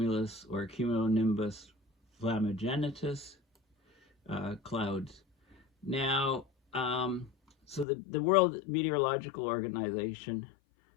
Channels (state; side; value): drops out; right; at 7.9 s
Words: or Cumulonimbus Flammagenitus Clouds. Now, so the World Meteorological Organization,